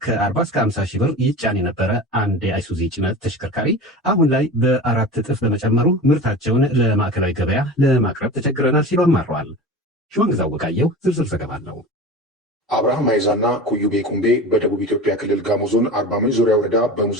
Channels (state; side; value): normal; both; correlation 0.33